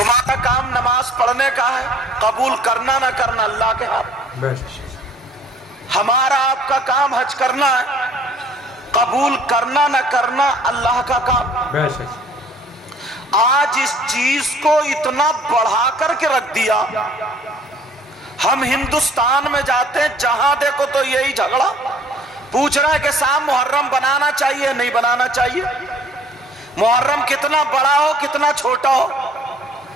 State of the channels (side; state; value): both; normal; correlation 0.55